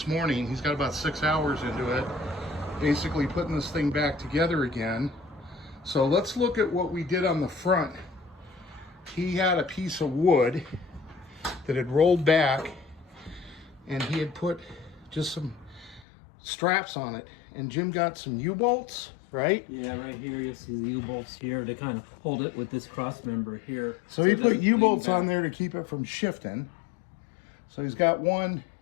morning. He's got about 6 hours into it, basically putting this thing back together again. So let's look at what we did on the front. He had a piece of wood that had rolled back, and he had put just some straps on it. And Jim got some U-bolts, right? Yeah, right here you see the U-bolts here to kind of hold it with this cross member here. So he put U-bolts on there to keep it from shifting. So he's got one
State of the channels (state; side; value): drops out; right; at 16.1 s